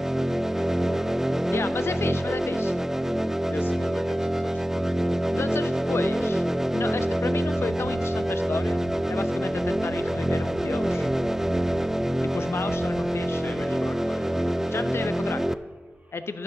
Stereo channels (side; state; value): both; normal; correlation 0.95